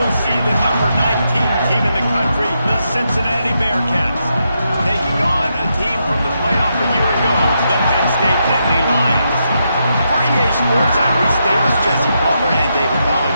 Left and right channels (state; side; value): inverted; both; correlation -0.82